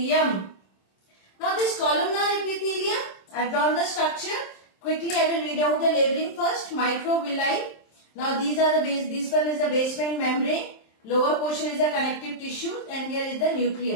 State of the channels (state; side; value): late; right; 27 ms